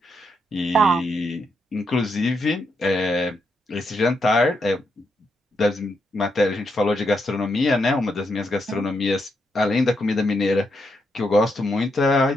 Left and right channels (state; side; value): normal; both; correlation 0.81